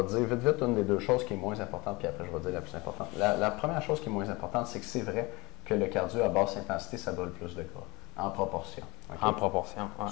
te dire vite, vite, une des deux choses qui est moins importante, puis après je vais te dire la plus importante. La première chose qui est moins importante, c'est que c'est vrai que le cardio à basse intensité, ça brûle plus de gras, en proportion. Okay? En proportion, ouais.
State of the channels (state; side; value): quieter; right; 24.1 dB